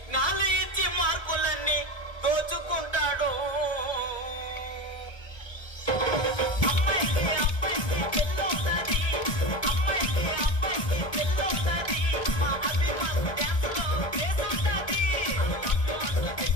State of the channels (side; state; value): right; late; 1.7 ms